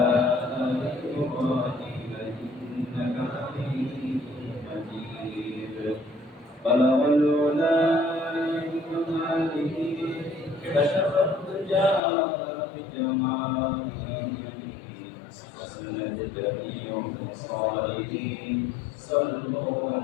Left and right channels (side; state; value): right; drops out; at 12.0 s